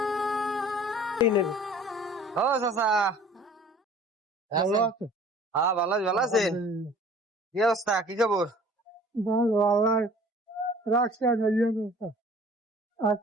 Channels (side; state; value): both; normal; correlation 0.49